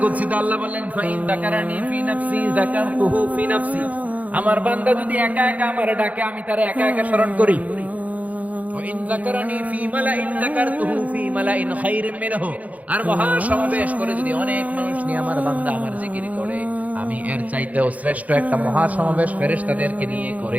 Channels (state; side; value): late; left; 0.073 ms